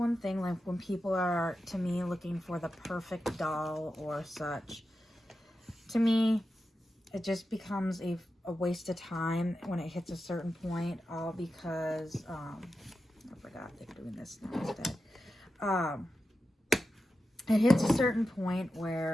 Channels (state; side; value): normal; both; correlation 0.91